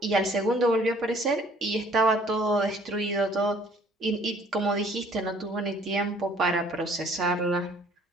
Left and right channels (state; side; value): normal; both; correlation 0.57